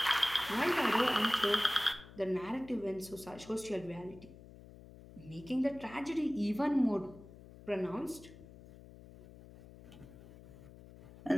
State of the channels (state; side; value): noise; left; hum, 18 dB below the sound